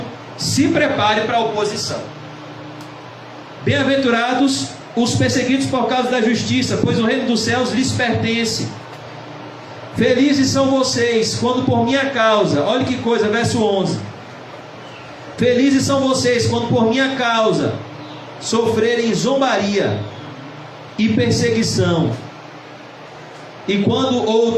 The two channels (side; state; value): both; identical; correlation 1.00